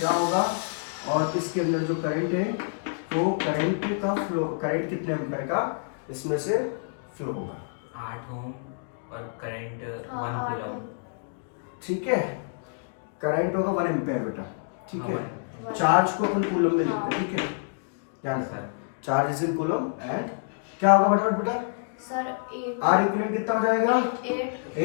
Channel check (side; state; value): right; silent; digital silence